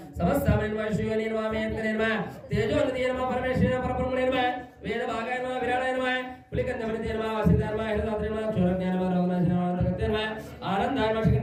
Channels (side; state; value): both; identical; correlation 1.00